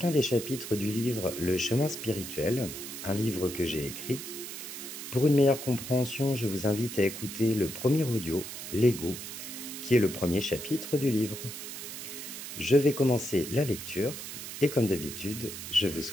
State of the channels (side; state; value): right; noise; hiss, 9 dB below the sound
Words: des chapitres du livre Le chemin spirituel, un livre que j'ai écrit. Pour une meilleure compréhension, je vous invite à écouter le premier audio, L'ego, qui est le premier chapitre du livre. Je vais commencer la lecture et comme d'habitude, je vous